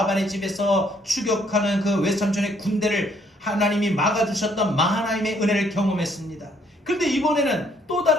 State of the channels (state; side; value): normal; both; correlation 0.66